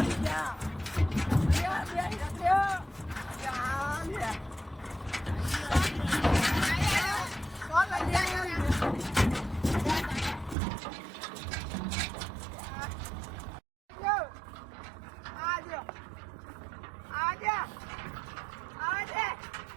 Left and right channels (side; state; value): left; drops out; at 10.6 s